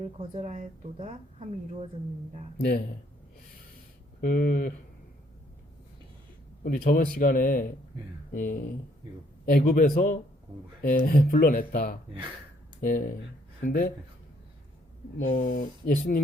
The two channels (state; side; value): normal; both; correlation 0.67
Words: 거절하였도다 함이 이루어졌느니라. 네. 우리 저번 시간에 이 이거 애굽에서 공부해. 불러냈다. 예. 근데 뭐